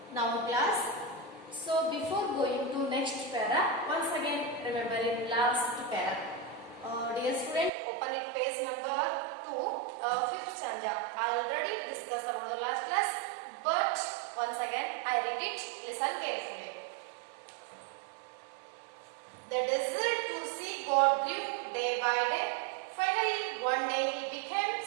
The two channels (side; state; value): left; drops out; at 7.7 s